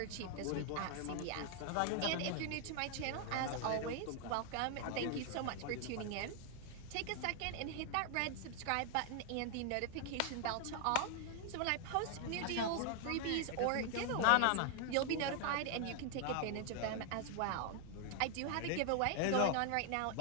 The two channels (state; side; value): different; both; correlation 0.00